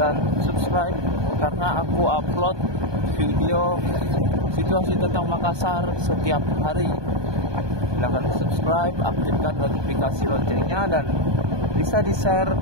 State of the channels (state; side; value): late; left; 1.2 ms